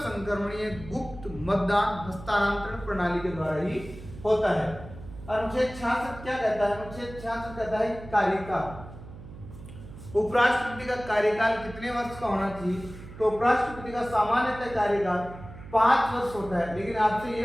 गुप्त मतदान हस्तांतरण प्रणाली के द्वारा ही होता है। अनुच्छेद 66 क्या कहता है, अनुच्छेद 66 कहता है कार्यकाल। उपराष्ट्रपति का कार्यकाल कितने वर्ष का होना चाहिए, तो उपराष्ट्रपति का सामान्यतः कार्यकाल 5 वर्ष होता है। लेकिन आपसे ये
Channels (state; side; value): noise; right; hum, 15 dB below the sound